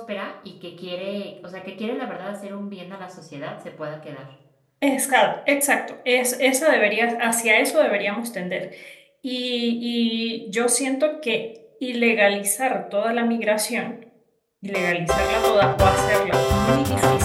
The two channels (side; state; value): both; identical; correlation 1.00